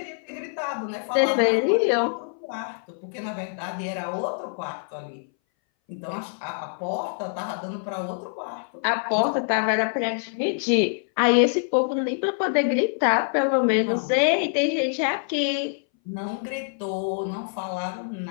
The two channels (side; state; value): right; silent; 60 dB below the other